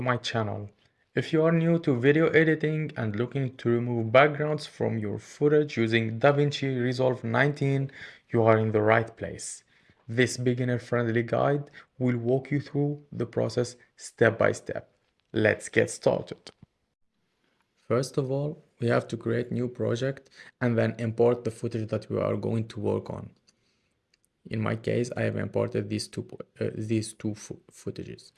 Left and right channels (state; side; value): identical; both; correlation 1.00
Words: my channel. If you are new to video editing and looking to remove backgrounds from your footage using DaVinci Resolve 19, you are in the right place. This beginner-friendly guide will walk you through the process step by step. Let's get started. First of all, we have to create new project and then import the footage that we are going to work on. In my case, I have imported these two footages.